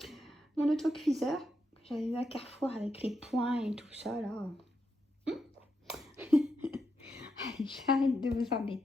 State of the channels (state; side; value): normal; both; correlation 0.83